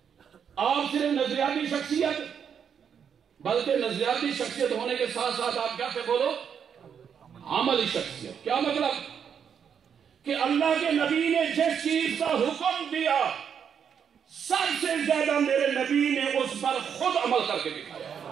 آپ صرف نظریاتی شخصیت بلکہ نظریاتی شخصیت ہونے کے ساتھ ساتھ آپ کیا تھے بولو؟ عملی شخصیت. کیا مطلب؟ کہ اللہ کے نبی نے جس چیز کا حکم دیا سب سے زیادہ میرے نبی نے اس پر خود عمل کر کے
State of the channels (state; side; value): quieter; left; 7.6 dB